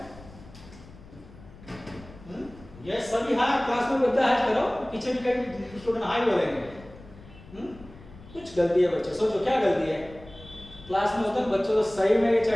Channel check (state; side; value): noise; left; rumble, 20 dB below the sound